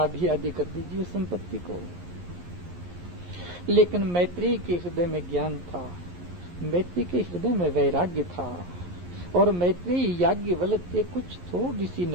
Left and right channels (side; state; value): left; late; 11 ms